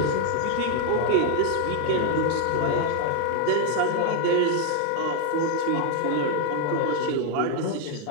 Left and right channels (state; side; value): different; both; correlation 0.00